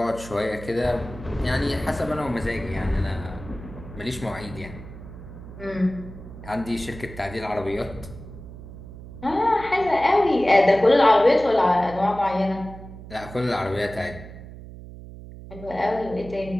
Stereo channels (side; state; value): right; noise; hum, 14 dB below the sound